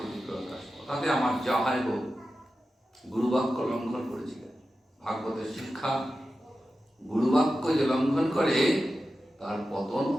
প্রকাশ, কথাতে আমার যা হয় হোক। গুরুবাক্য লঙ্ঘন করেছিলেন। ভাগবতের শিক্ষা, গুরুবাক্য যে লঙ্ঘন করে তার পতন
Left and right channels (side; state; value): both; normal; correlation 0.92